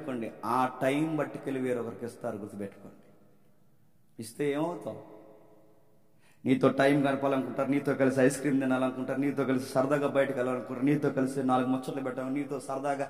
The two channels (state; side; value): identical; both; correlation 1.00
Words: ఆ టైం బట్టికెళ్ళి వేరొకరికి ఇస్తారు. గుర్తుపెట్టుకోండి. ఇస్తే ఏమవుతావు? నీతో టైం గడపాలనుకుంటారు, నీతో కలిసి ఐస్ క్రీమ్ తినాలనుకుంటారు, నీతో కలిసి సరదాగా బయటకు వెళ్ళాలనుకుంటారు, నీతో కలిసి 4 ముచ్చట్లు పెట్టాలి, నీతో సరదాగా